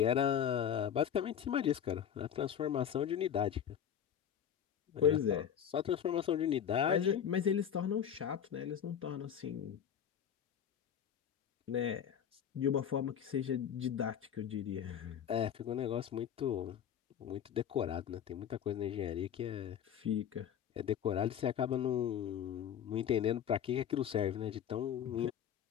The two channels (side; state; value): right; quieter; 8.9 dB